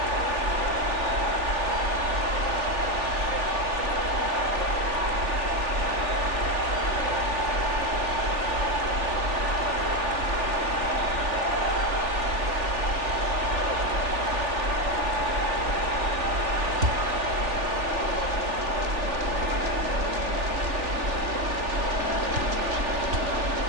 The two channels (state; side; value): late; left; 3.4 ms